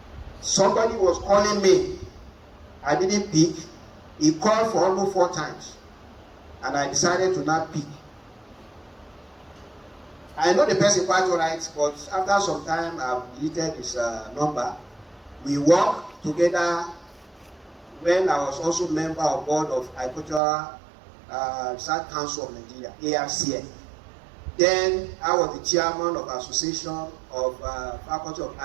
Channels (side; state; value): left; drops out; at 20.4 s